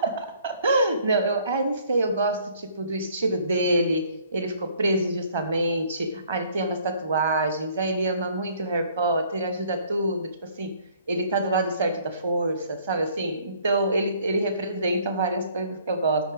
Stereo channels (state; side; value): inverted; both; correlation -0.59